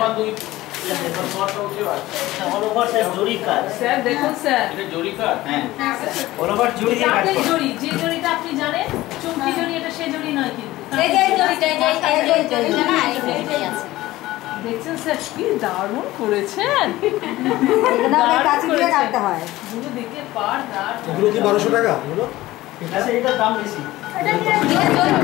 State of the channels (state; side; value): quieter; right; 17.1 dB